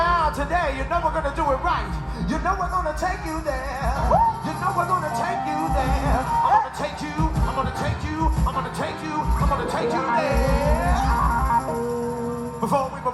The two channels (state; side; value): identical; both; correlation 1.00